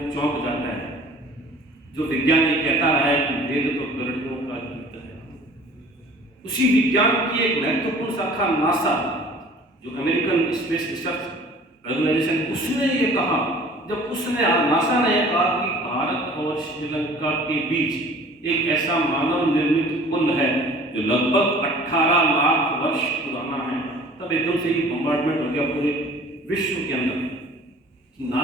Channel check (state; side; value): normal; both; correlation 0.48